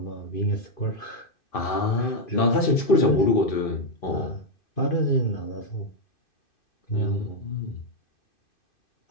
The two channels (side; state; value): right; late; 2.5 ms